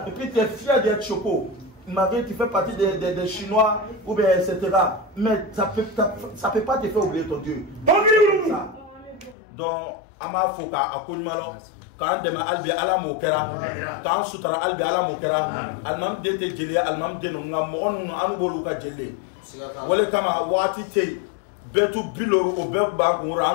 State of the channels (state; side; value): drops out; right; at 9.3 s